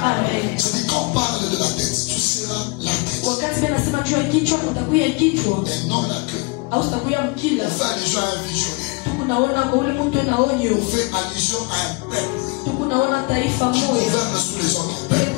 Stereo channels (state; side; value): quieter; right; 29.0 dB